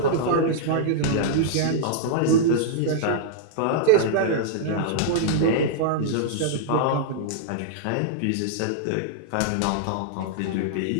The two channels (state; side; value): different; both; correlation -0.02